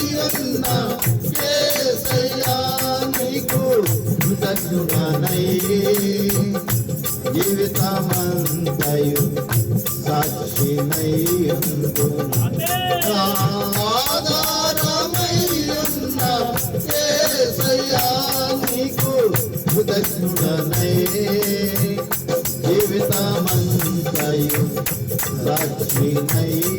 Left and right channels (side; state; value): both; identical; correlation 1.00